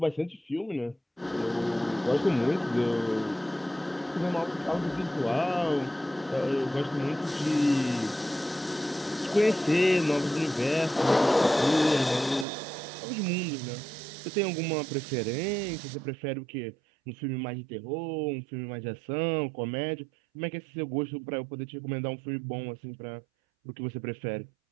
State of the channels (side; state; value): left; drops out; at 12.5 s